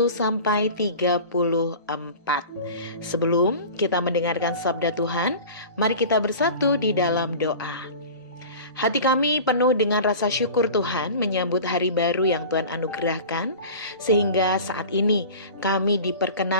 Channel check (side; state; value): both; inverted; correlation -0.37